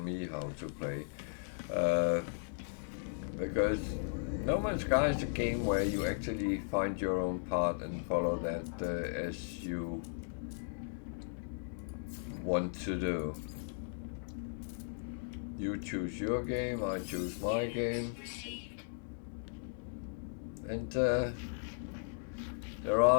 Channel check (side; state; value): right; silent; digital silence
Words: how to play. Because No Man's Sky is a game where you actually find your own path and follow that as you want to do. You choose your game, I choose my game, and there